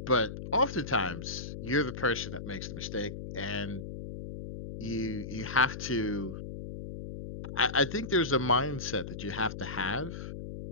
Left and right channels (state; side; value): noise; left; hum, 8 dB below the sound